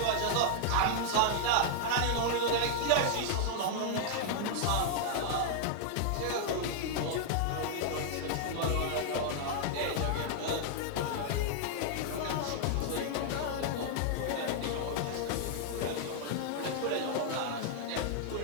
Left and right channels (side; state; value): both; different; correlation -0.01